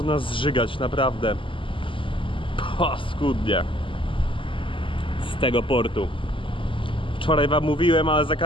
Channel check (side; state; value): right; late; 0.25 ms